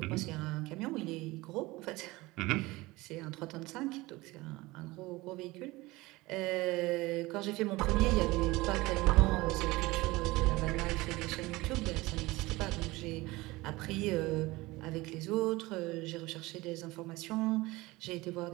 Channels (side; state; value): left; quieter; 20.8 dB